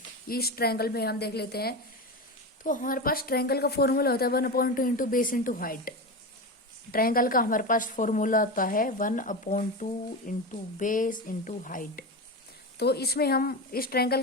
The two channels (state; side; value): normal; both; correlation 0.21